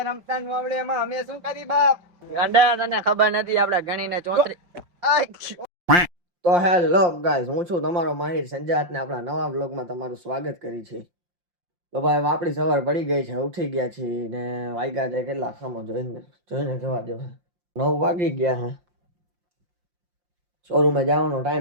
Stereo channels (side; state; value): left; late; 5.7 ms